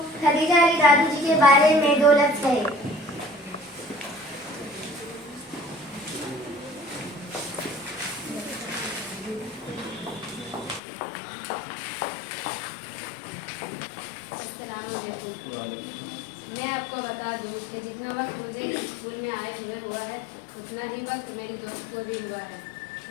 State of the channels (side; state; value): right; drops out; at 10.8 s